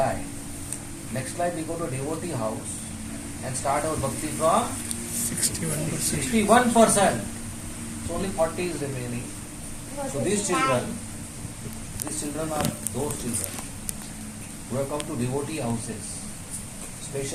next life we go to devotee house and start our bhakti from 61%. So only 40 is remaining. So these children are those children who have come to devotee houses,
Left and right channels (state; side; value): identical; both; correlation 1.00